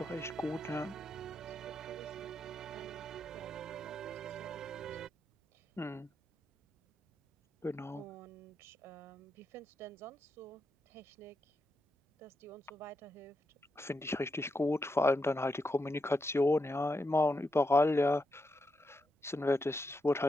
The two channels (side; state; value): both; normal; correlation 0.84